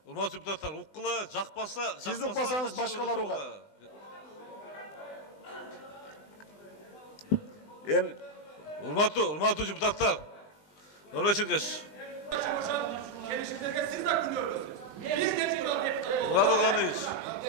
Urmatçı deputatlar, ukkula, jakpasa... Siz ukbasanız başkaları ukat. Urmatçı deputatlar. Ömrek Çirkeş. Gelişimlerge siz de gülüyorsunuz. Biz de çıkıyoruz. Murat Organiç.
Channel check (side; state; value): right; late; 20 ms